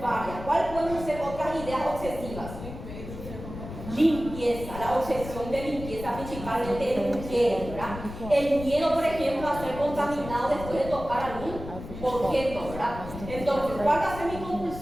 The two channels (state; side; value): noise; left; rumble, 11 dB below the sound